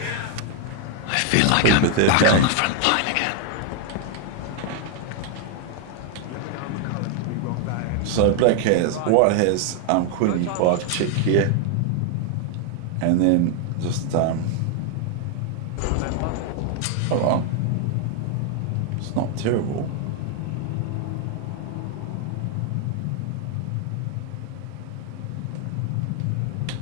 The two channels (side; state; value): both; different; correlation 0.00